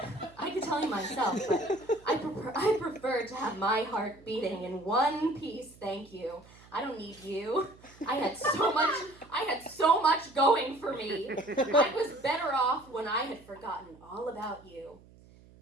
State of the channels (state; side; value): noise; right; hum, 24 dB below the sound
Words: but I prefer to have my heart beating in one piece, thank you. I don't need you. I had so much going for me. I was better off when I had forgotten all about you.